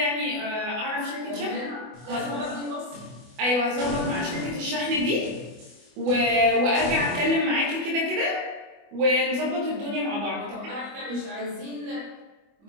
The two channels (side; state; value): left; late; 24 ms